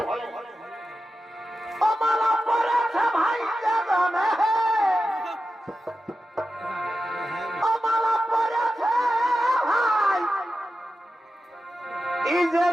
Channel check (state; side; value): normal; both; correlation 0.92